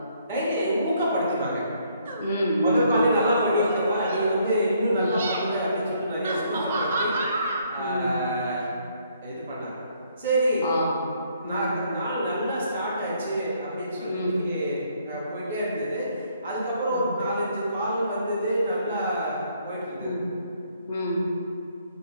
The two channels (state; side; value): inverted; both; correlation -0.68